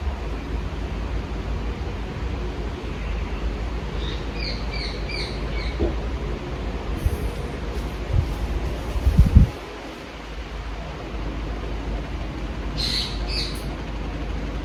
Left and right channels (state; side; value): identical; both; correlation 1.00